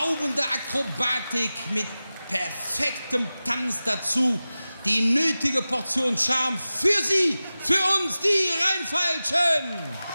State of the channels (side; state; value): both; inverted; correlation -0.96